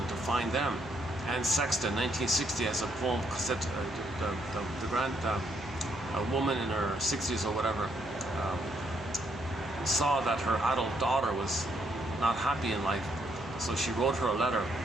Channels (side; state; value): left; noise; hum, 19 dB below the sound